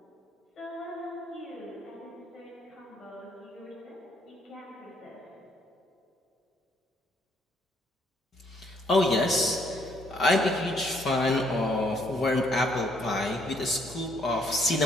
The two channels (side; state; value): both; normal; correlation 0.68